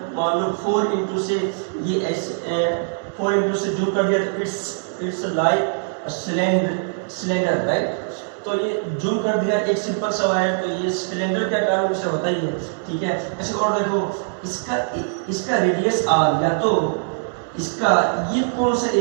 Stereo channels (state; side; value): silent; left; 64 dB below the other